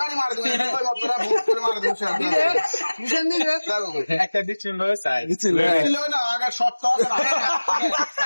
মার দিবে ওই মতরা ভূত করে মার দিবে নিছেন দিবে একটা দিছিল সাই ছিল না আগে শর্ত আছে না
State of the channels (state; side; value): inverted; both; correlation -1.00